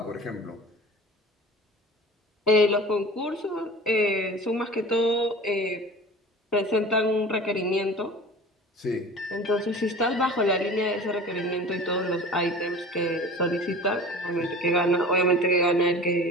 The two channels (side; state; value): both; normal; correlation 0.39